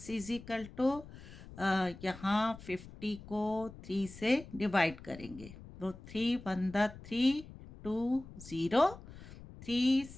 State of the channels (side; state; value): left; noise; rumble, 16 dB below the sound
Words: इज इक्वल टू यहाँ 50 को 3 से डिवाइड करेंगे तो 3 2 0 3